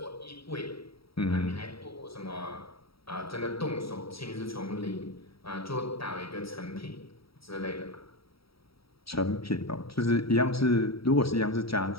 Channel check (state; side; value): late; right; 0.75 ms